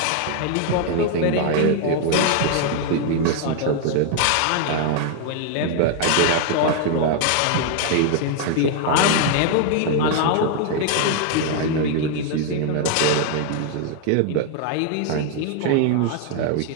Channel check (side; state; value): both; different; correlation 0.00